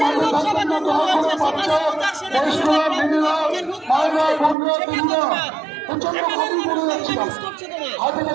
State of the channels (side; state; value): left; drops out; at 4.5 s